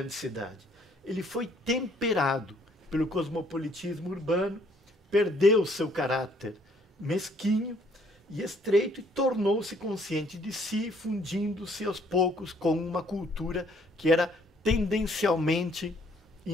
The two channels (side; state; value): both; normal; correlation 0.64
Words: cidade. Ele foi temperado pelo cosmopolitismo urbano, perdeu seu caráter mesquinho e estreito e tornou-se consciente de si, fundindo-se aos poucos com uma cultura que era tendencialmente